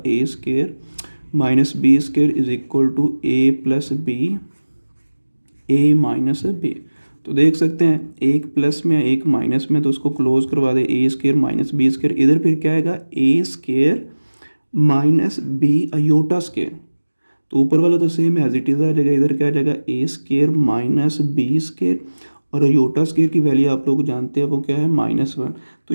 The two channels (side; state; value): both; inverted; correlation -1.00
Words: a square minus b square is equal to a plus b a minus b. तो देख सकते हैं एक प्लस में एक माइनस में, तो उसको क्लोज करवा दे a square minus b square, इधर फिर क्या आएगा a square minus b iota square. तो ऊपर वाला तो सेम एज इट इज़ आ जाएगा, इधर क्या आ जाएगा a square minus b square और अयोटा स्केयर की वैल्यू आप लोग जानते हैं वो क्या है -1। तो